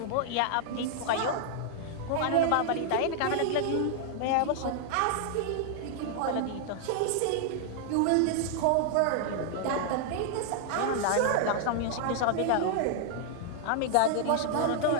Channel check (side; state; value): both; different; correlation -0.01